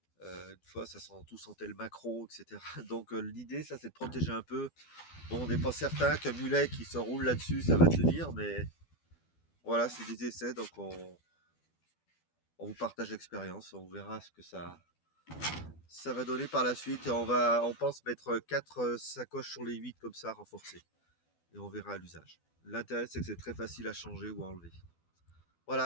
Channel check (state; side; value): late; right; 12 ms